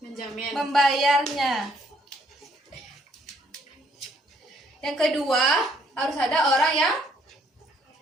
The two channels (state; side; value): normal; both; correlation 0.66